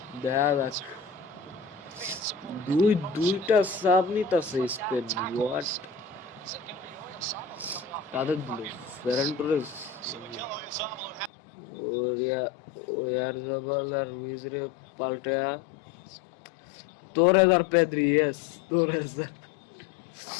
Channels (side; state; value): right; drops out; at 11.3 s